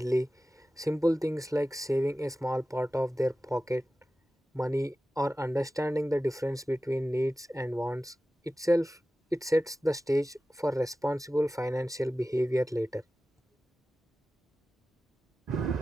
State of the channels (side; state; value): both; normal; correlation 0.95